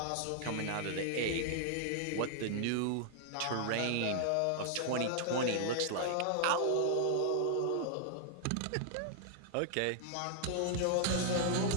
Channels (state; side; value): different; both; correlation -0.01